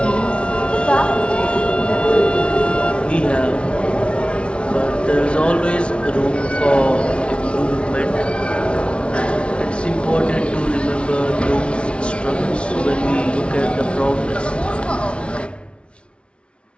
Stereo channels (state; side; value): late; right; 0.059 ms